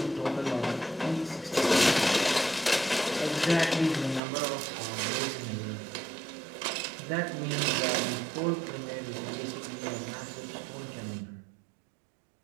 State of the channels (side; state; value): left; drops out; at 4.2 s